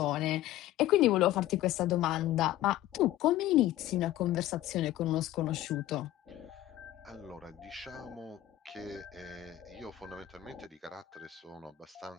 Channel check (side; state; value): right; quieter; 14.1 dB